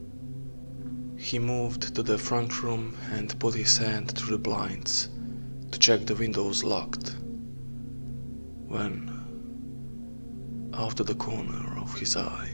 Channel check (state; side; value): inverted; both; correlation -1.00